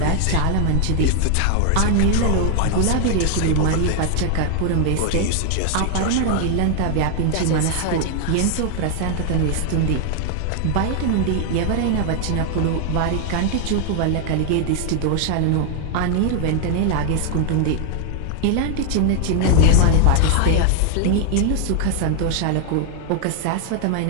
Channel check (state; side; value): different; both; correlation 0.00